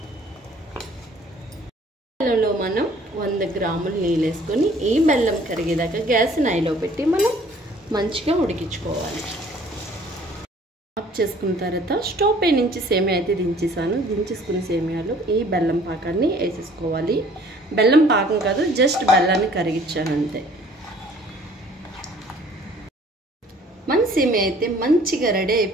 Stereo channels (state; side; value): normal; both; correlation 0.55